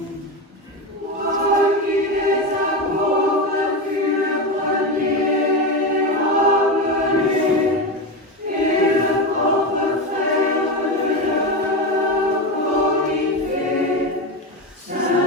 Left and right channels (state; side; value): normal; both; correlation 0.17